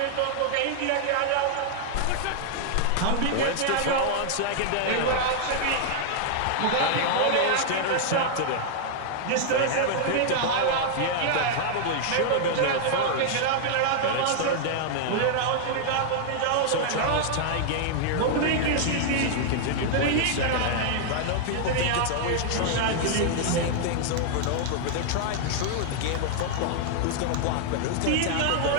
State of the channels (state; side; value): different; both; correlation -0.01